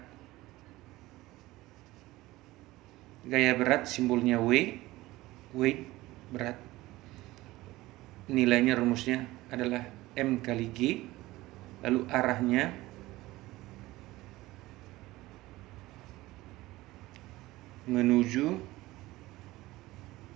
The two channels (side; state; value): left; quieter; 18.4 dB